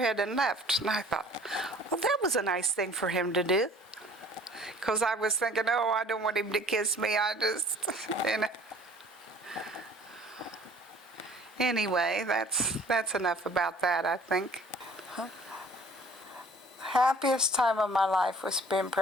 and left. And I thought, well, that was a nice thing for him to do. Because I was thinking, oh, I don't want him to kiss me. I just, you know. Anyway, that's enough about that, I think. Happiest time of my life was being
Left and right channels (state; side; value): normal; both; correlation 0.51